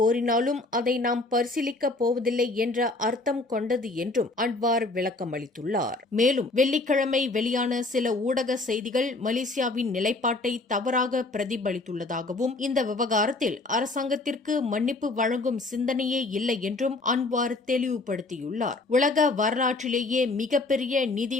அதை நாம் பரிசீலிக்கப் போவதில்லை என்ற அர்த்தம் கொண்டது என்றும் அன்வார் விளக்கம் அளித்துள்ளார். மேலும் வெள்ளிக்கிழமை வெளியான சில ஊடக செய்திகள் மலேசியாவின் நிலைப்பாட்டை தவறாக பிரதிபலித்துள்ளதாகவும் இந்த விவகாரத்தில் அரசாங்கத்திற்கு மன்னிப்பு வழங்கும் சிந்தனையே இல்லை என்றும் அன்வார் தெளிவுபடுத்தியுள்ளார். உலக வரலாற்றிலேயே மிகப்பெரிய நிதி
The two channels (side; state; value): right; quieter; 3.1 dB